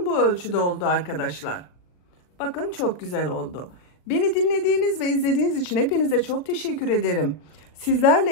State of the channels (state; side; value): late; right; 39 ms